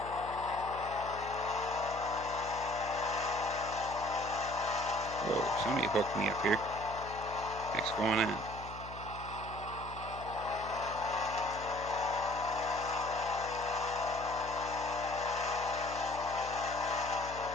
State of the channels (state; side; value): noise; left; hum, 13 dB below the sound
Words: Whoa, somebody hooked me up here. What's going on?